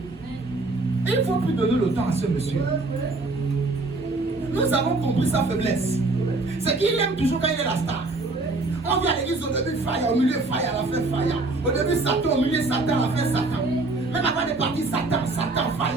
Et il ne faut plus donner le temps à ce monsieur. Nous avons compris sa faiblesse. C'est qu'il aime toujours quand il est la star. On vient à l'église au début, fire, au milieu, fire, à la fin, fire. Au début, Satan, au milieu, Satan, à la fin, Satan. Même avant de partir, Satan, Satan,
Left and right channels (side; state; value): left; quieter; 3.2 dB